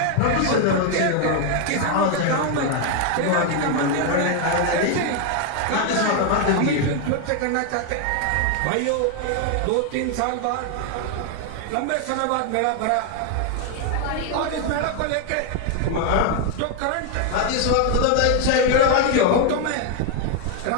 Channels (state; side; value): different; both; correlation 0.01